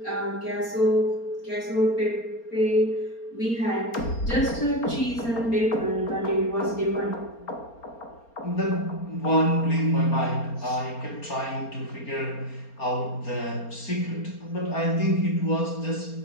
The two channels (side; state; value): right; late; 4.3 ms